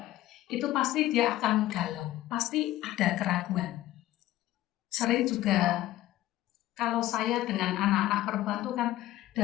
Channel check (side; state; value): right; quieter; 15.0 dB